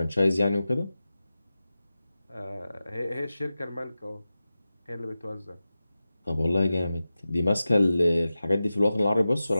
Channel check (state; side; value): inverted; both; correlation -0.94